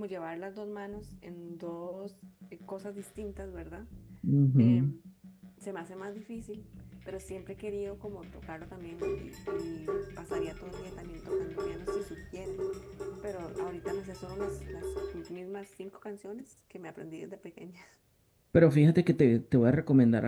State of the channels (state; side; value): identical; both; correlation 1.00